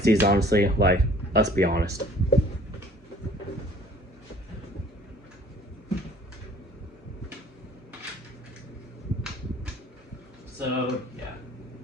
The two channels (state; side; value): normal; both; correlation 0.53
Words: these, honestly. Let's be honest. So yeah.